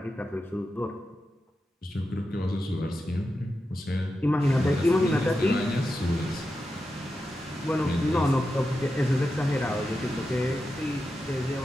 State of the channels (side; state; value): both; normal; correlation 0.90